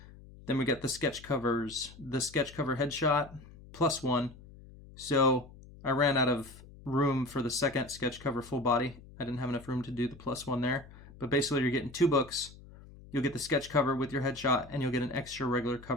we got the sketch covers. The sketch cover headshot +1. So I ran out of room for the second sketch cover full body. I didn't have enough room to do the +1 there. But basically you're getting 2 books. You'll get the sketch cover with your headshot, and you'll get an extra regular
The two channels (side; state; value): left; noise; hum, 20 dB below the sound